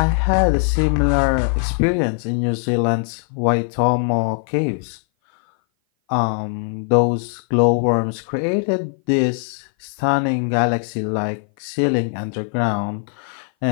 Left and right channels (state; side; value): silent; right; 58 dB below the other